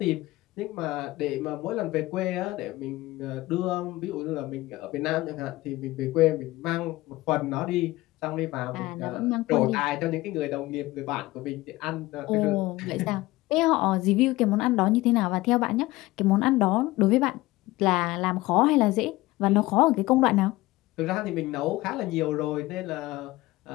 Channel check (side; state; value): right; quieter; 18.8 dB